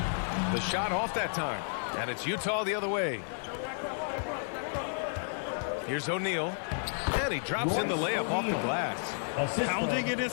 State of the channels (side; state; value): right; silent; 57 dB below the other